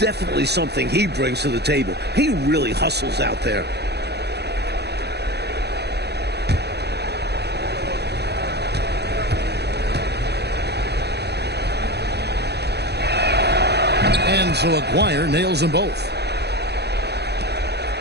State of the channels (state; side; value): late; left; 0.48 ms